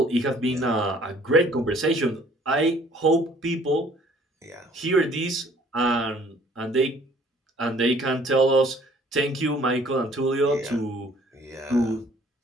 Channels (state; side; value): normal; both; correlation 0.57